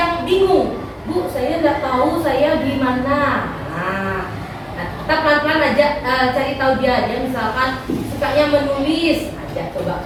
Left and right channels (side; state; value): both; identical; correlation 1.00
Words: bingung, Bu, saya tidak tahu saya di mana. Nah, kita pelan-pelan aja cari tahu dia misalkan sukanya menulis, ajak coba